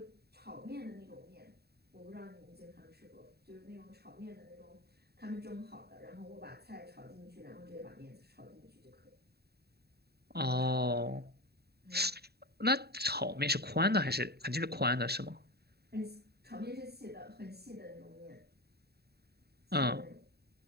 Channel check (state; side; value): late; left; 0.47 ms